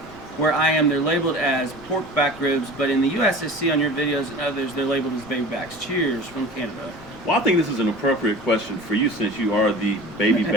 where I am, they're labeled as pork back ribs, but in the U.S., I see on your videos and others, they're labeled as baby backs. Cheers from Canada. Well, I think this is an appropriate question for you, since you are the baby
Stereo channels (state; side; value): noise; right; rumble, 24 dB below the sound